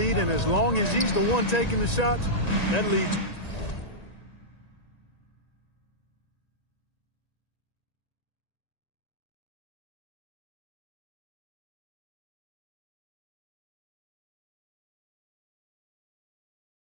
and as long as he's the one taking the shots, that lead's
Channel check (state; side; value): late; right; 1.9 ms